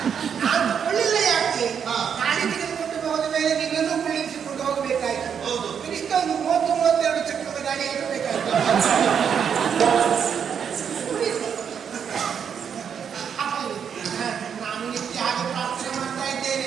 ನಾನು ತಗೊಳ್ಳಿಲ್ಲ. ಯಾಕೆ ಹಾ. ಗಾಡಿ ತೆಗೆದುಕೊಂಡು ಹೋದ ಮೇಲೆ ನಿನ್ನನ್ನು ಕುಳ್ಳಿರಿಸಿಕೊಂಡು ಹೋಗಬೇಕಾಯ್ತು. ಹೌದು. ಕನಿಷ್ಠ ಒಂದು 30-32 ಚಕ್ರದ ಗಾಡಿ ಇರಬೇಕಾಯ್ತು. ನಾನು ನಿತ್ಯ ಹಾಗೆ ಪ್ರಾರ್ಥನೆ ಮಾಡ್ತಾ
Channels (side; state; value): left; quieter; 7.5 dB